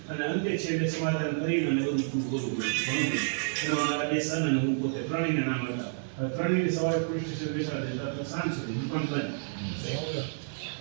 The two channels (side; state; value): left; silent; digital silence